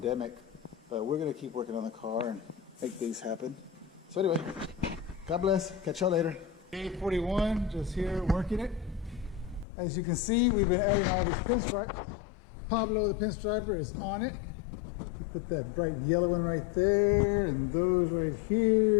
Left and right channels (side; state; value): right; drops out; at 9.7 s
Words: But we're going to keep working on the car and make things happen. So anyway, God bless. Catch y'all later. Day 41, just here working it. As you can see, we've been adding all these pinstripes. Pablo, the pinstriper, is on it. Put that bright yellow one right there, and those right